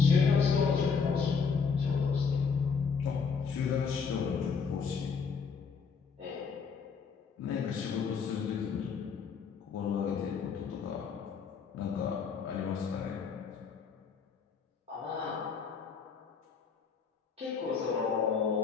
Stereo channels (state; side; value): quieter; right; 5.8 dB